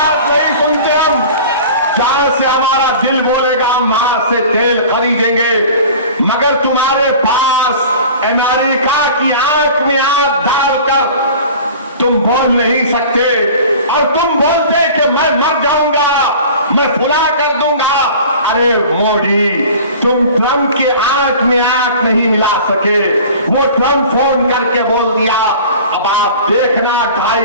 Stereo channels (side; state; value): both; inverted; correlation -0.41